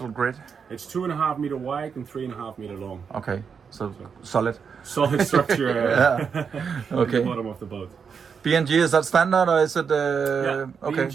grid? It's 2.5 meter wide and 3.5 meter long. Okay, so solid. Solid structure Okay. at the bottom of the boat. BNG, is that standard or is it? Okay.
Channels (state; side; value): quieter; left; 6.3 dB